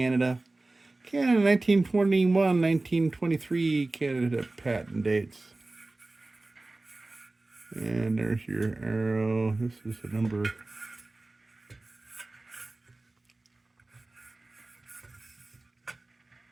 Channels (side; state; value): left; quieter; 3.0 dB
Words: Canada 1921, 1923 Canada patent dates. And there's your arrow. This is the number.